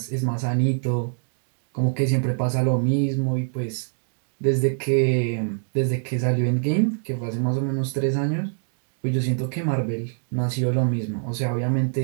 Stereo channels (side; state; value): left; silent; digital silence